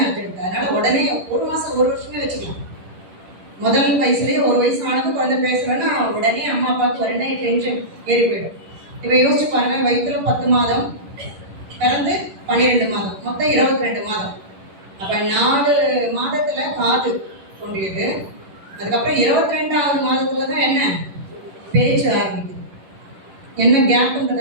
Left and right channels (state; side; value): late; left; 10 ms